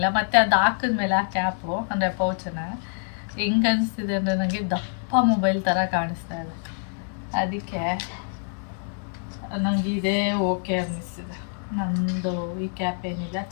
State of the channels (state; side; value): silent; right; digital silence